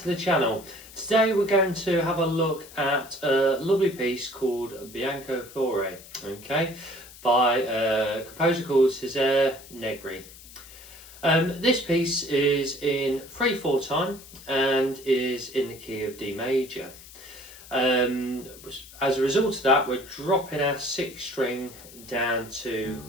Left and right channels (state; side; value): noise; left; hiss, 19 dB below the sound